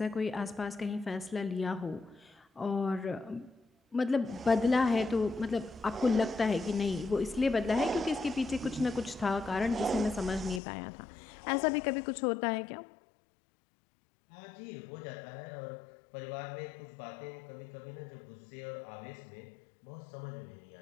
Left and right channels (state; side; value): drops out; right; at 10.6 s